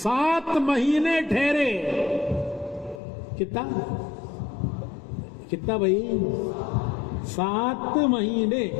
مہینے ٹھہرے۔ کتنا بھائی؟ 7 مہینے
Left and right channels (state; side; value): drops out; right; at 3.0 s